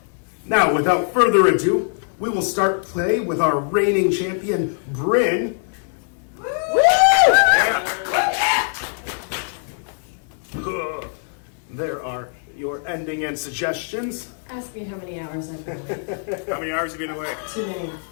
now without further ado, we will start play with our reigning champion, Bryn. There are your ending and suggestions. Ask me how many hours I've been away. How many hours have you been away? Too many.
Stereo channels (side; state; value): right; silent; digital silence